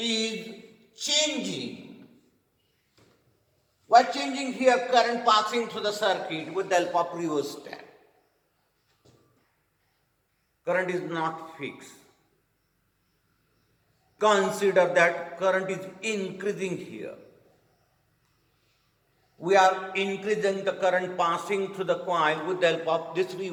changing. We are changing here current passing through the circuit with the help of rheostat. Current is not fixed. Consider that current is increasing here. We are increasing the current passing through the coil with the help of this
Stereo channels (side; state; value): both; identical; correlation 1.00